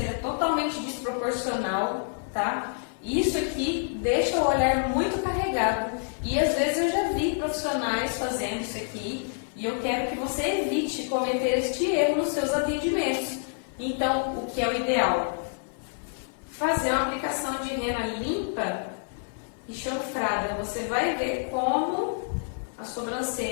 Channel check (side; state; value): right; silent; 60 dB below the other